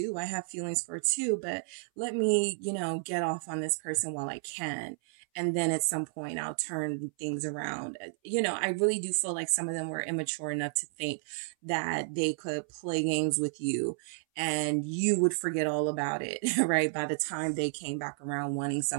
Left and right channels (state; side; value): silent; left; 57 dB below the other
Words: I have feelings for too, but let me, you know, get off on this person while I can. And then at some point I'll turn things around. You know, I really do feel like some of them were immature enough to think that they could play games with you and you would forget all about it, right? By the time they came back around wanting